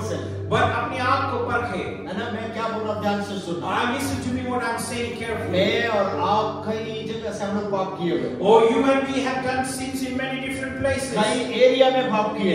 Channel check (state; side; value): identical; both; correlation 1.00